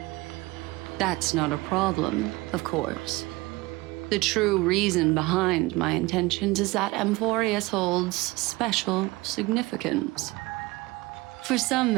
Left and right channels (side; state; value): left; quieter; 21.7 dB